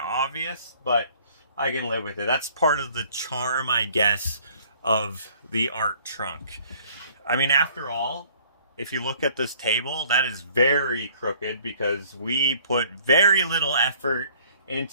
obvious, but I can live with it. That's part of the charm, I guess, of the art trunk. I mean, after all, if you look at this table, that is very crooked because we put very little effort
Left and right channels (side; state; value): both; inverted; correlation -0.56